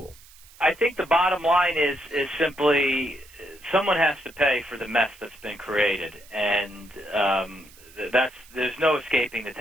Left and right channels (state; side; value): noise; right; hiss, 23 dB below the sound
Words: I think the bottom line is simply someone has to pay for the mess that's been created, and there's no escaping the